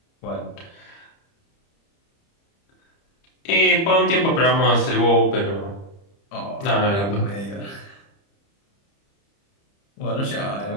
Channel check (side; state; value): right; late; 30 ms